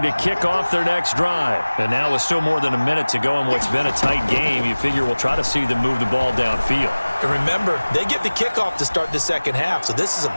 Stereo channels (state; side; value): inverted; both; correlation -1.00